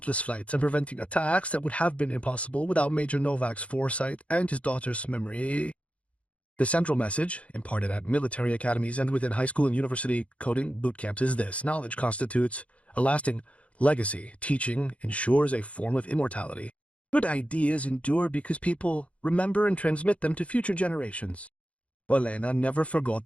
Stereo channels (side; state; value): right; late; 0.064 ms